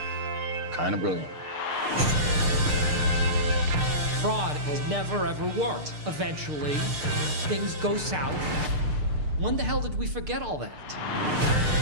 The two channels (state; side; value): late; left; 6.7 ms